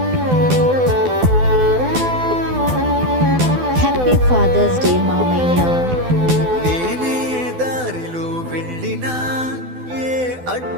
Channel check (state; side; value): late; left; 12 ms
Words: హ్యాపీ ఫాదర్స్ డే మామయ్య. నేనే దారిలో వెళ్ళినా ఏ